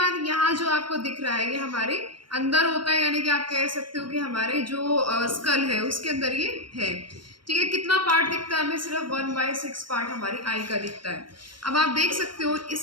यहाँ जो आपको दिख रहा है ये हमारे अंदर होता है, यानी कि आप कह सकते हो कि हमारे जो स्कल है उसके अंदर ये है। ठीक है, कितना पार्ट दिखता है हमें, सिर्फ 1/6 पार्ट हमारी आई का दिखता है। अब आप देख सकते हो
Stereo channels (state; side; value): late; left; 0.72 ms